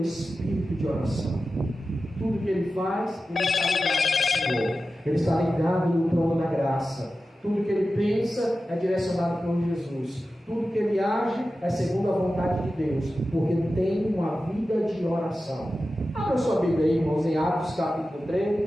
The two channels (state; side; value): normal; both; correlation 0.93